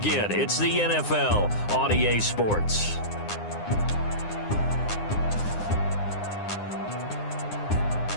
It's the NFL on EA Sports.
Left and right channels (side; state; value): right; late; 9.8 ms